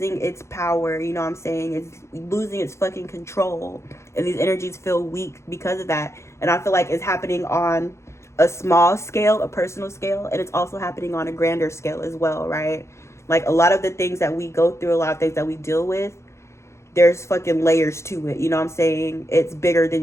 its power, you know what I'm saying? It's losing its fucking control. And these energies feel weak because of that. And I feel like it's happening on a small scale, a personal scale, and it's also happening on a grander scale as well, right? Like a lot of the things that we go through, a lot of things that we deal with, there's fucking layers to it, you know what I'm saying? It's bigger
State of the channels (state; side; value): late; right; 0.13 ms